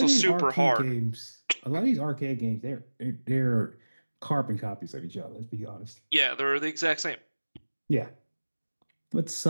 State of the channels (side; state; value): both; inverted; correlation -1.00